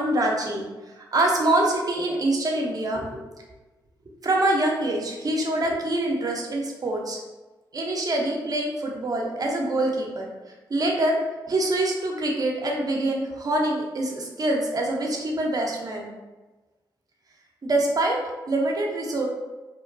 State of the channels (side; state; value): both; normal; correlation 0.63